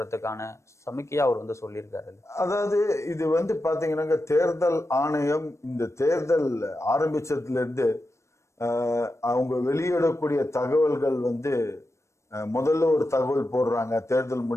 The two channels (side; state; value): right; late; 0.14 ms